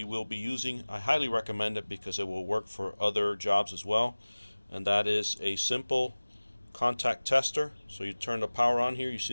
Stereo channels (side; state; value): both; inverted; correlation -1.00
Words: will be using. I highly recommend it because it will work for other jobs as well, and that is a simple contact tester. So you turn the power on here, you